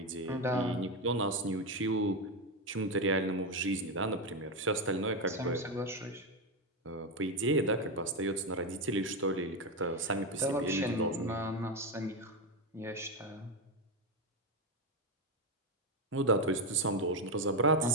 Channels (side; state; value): both; normal; correlation 0.10